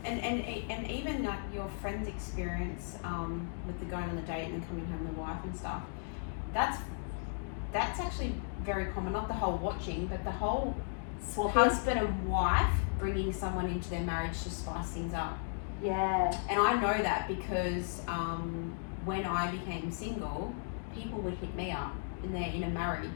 And even like your friend's experience with the going on the date and then coming home with the wife and stuff, that's actually very common. Not the whole watching, but the whole husband and wife bringing someone into their marriage to spice things up. Yeah. And I know that because when I became single, people would hit me up and they're in a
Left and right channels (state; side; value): silent; right; digital silence